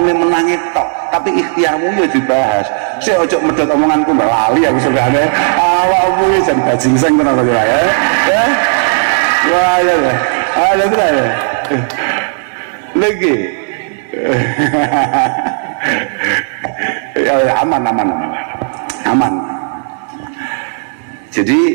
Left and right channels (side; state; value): left; silent; 61 dB below the other